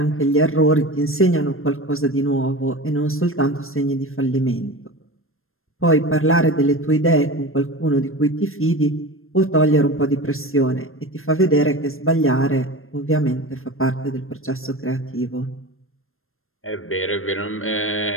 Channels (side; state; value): right; late; 0.61 ms